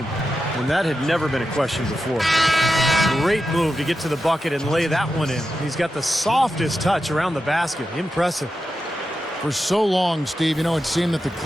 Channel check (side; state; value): both; normal; correlation 0.89